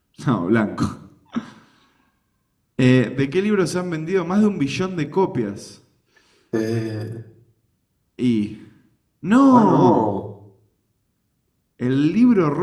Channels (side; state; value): both; identical; correlation 1.00